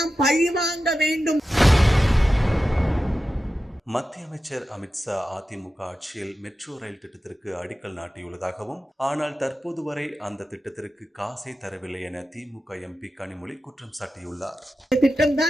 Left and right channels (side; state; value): both; normal; correlation 0.92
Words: பழிவாங்க வேண்டும். மத்திய அமைச்சர் அமித்ஷா அதிமுக ஆட்சியில் மெட்ரோ ரயில் திட்டத்திற்கு அடிக்கல் நாட்டியுள்ளதாகவும், ஆனால் தற்போது வரை அந்த திட்டத்திற்கு காசை தரவில்லை என திமுக எம்பி கனிமொழி குற்றம் சாட்டியுள்ளார். திட்டம்